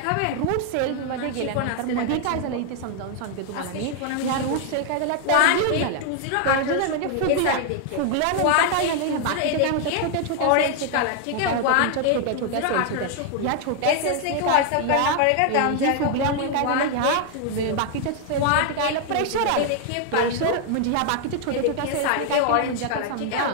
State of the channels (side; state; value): both; different; correlation 0.00